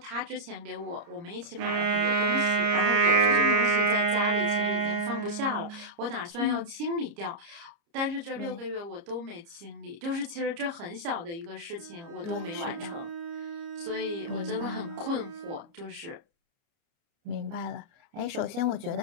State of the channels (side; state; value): left; late; 30 ms